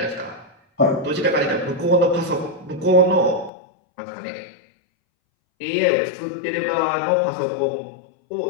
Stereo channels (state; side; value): drops out; right; at 3.5 s